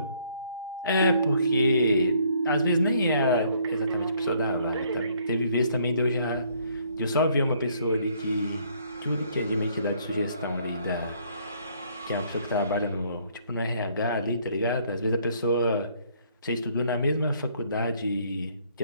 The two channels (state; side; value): inverted; both; correlation -0.64